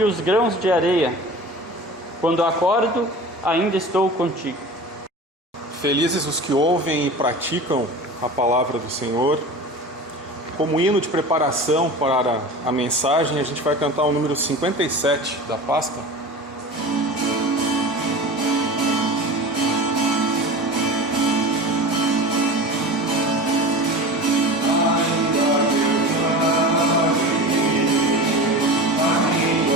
os grãos de areia. Quando acordo, ainda estou contigo. Felizes os que ouvem e praticam a palavra do Senhor. Como hino de preparação para a mensagem, a gente vai cantar o número 57 da pasta.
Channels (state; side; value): normal; both; correlation 0.34